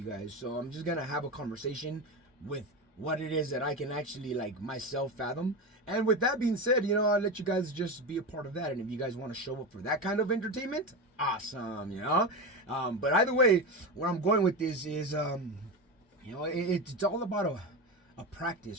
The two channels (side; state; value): both; normal; correlation 0.19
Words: guys. So I'm just gonna have a conversation with what it is that I can actually like myself fathom. And with that being said, you know, I'll let you guys just be a part of that. And if you guys want to show up for that kind of entertainment, awesome, you know. But either way, where I'm going with this is you know, it's all about a